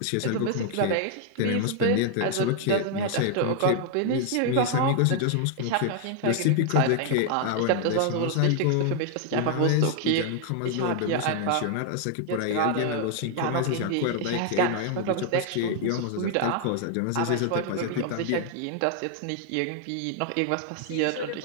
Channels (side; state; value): both; different; correlation 0.00